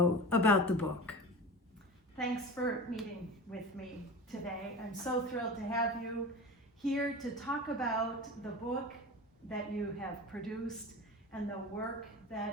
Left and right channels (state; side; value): normal; both; correlation 0.31